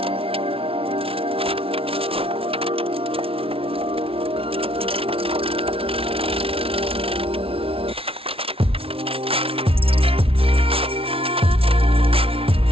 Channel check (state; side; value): late; left; 0.26 ms